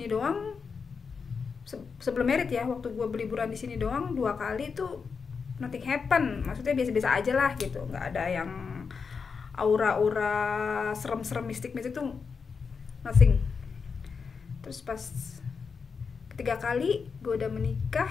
doang. Sebelum merit ya, waktu gue berliburan di sini doang 2 kali tuh nothing happen, maksudnya biasa-biasa aja lah gitu, nggak ada yang aura-aura serem-serem mistik-mistik tuh, nothing. Terus pas ketiga kali gue udah menikah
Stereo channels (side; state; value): right; quieter; 5.4 dB